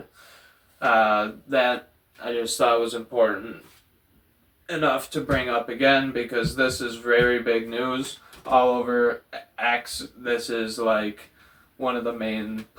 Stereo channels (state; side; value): identical; both; correlation 1.00